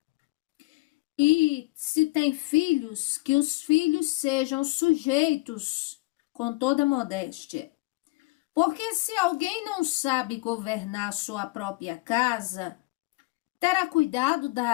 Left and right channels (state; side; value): quieter; right; 23.2 dB